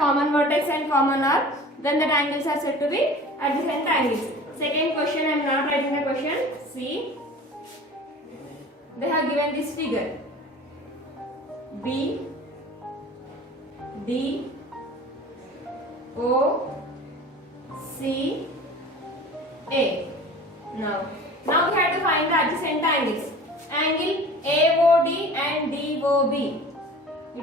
vertex and common arc, then the angles are said to be adjacent angles. Second question, I am not writing the question. See, they have given this figure. B, D, O, C, A. Now we have to find the adjacent angles. Angle AOD and DOB.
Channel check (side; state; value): both; normal; correlation 0.41